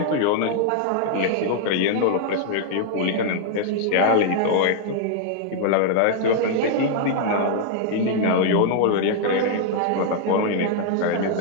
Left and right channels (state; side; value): different; both; correlation -0.01